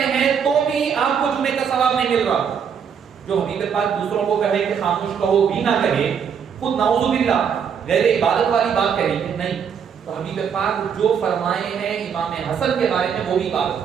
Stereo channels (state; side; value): quieter; left; 7.3 dB